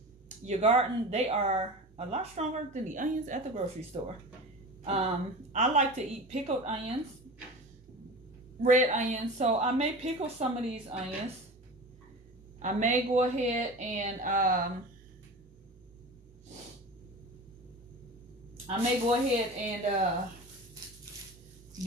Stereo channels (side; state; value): both; normal; correlation 0.33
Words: your garden, they are a lot stronger than the onions at the grocery store. I like to eat pickled onions. red onions. So I may pickle some of these onions. I may go ahead and